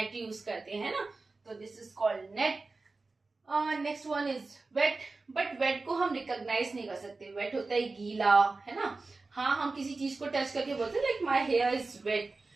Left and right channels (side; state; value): left; quieter; 3.7 dB